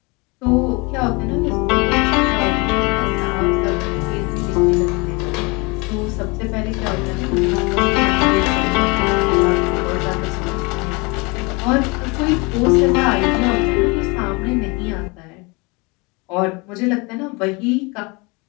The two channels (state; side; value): quieter; right; 28.0 dB